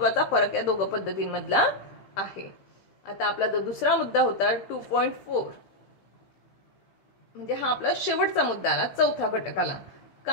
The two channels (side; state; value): right; late; 15 ms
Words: फरक या दोघं पद्धतींमधला आहे. आता आपला जो दुसरा मुद्दा होता 2.4 म्हणजे हा आपला शेवटचा मुद्दा आला. चौथा घटक आला